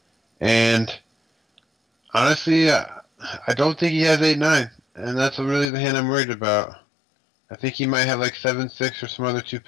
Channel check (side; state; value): right; drops out; at 5.7 s